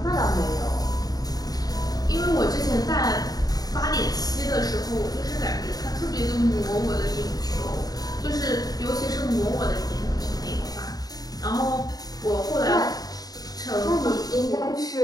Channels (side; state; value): right; late; 0.18 ms